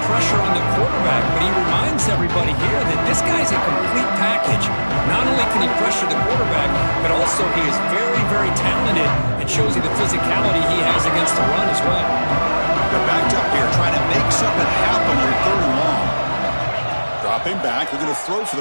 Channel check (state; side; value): inverted; both; correlation -1.00